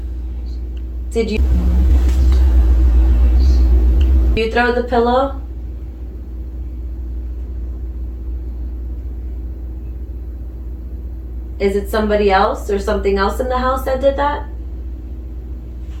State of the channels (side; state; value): both; identical; correlation 1.00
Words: Did you throw the pillow? Is it somebody else or something else in the house that did that?